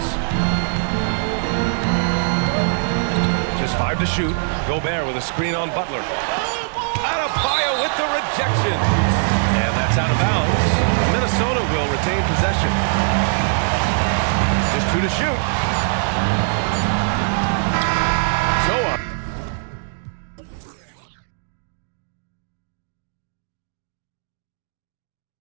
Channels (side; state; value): left; silent; 65 dB below the other